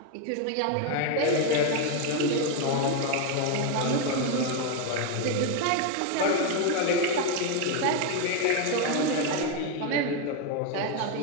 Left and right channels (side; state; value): both; different; correlation 0.01